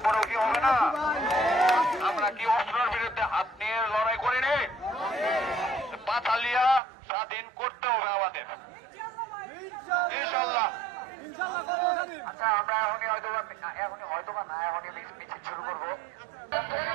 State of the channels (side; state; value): left; drops out; at 6.8 s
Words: কি হবে না? আমরা কি অস্ত্রের বিরুদ্ধে হাত নিয়ে লড়াই করিনি? পাথালিয়া স্বাধীন করতে হবে আমাদের, ইনশাল্লাহ। আচ্ছা, আমরা এখনই মিছিল শুরু করবো।